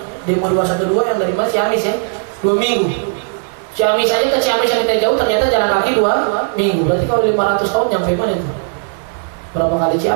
demo 212 yang dari Ciamis 2 minggu. Ciamis saja ke Ciamis yang kita jauh ternyata jalan kaki 2 minggu. Berarti kalau 500 tahun nyampe mana itu? Berapa kali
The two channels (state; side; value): silent; left; 60 dB below the other